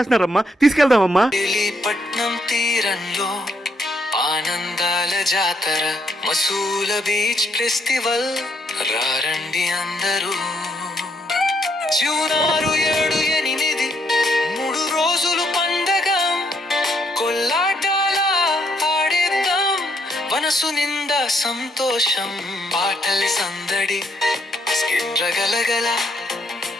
తీసుకెళ్దామమ్మా. మజిలీపట్నం తీరంలో ఆనందాల జాతర మసూల బీచ్ ఫెస్టివల్ రారండి అందరూ. జూన్ 6, 7, 8 3 రోజులు పండగ. కొల్లాటాల ఆడేద్దాం, మనసు నిండా సంతోషం. పాటల సందడి, స్కిట్ గలగల,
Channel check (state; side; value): normal; both; correlation 0.74